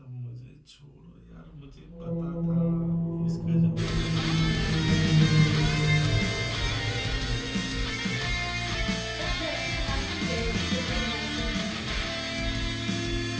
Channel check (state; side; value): identical; both; correlation 1.00